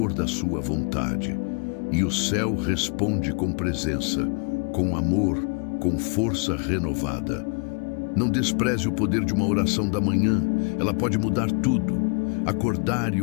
da sua vontade. E o céu responde com presença, com amor, com força renovada. Não despreze o poder de uma oração da manhã, ela pode mudar tudo. Acordar e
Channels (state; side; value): quieter; right; 38.0 dB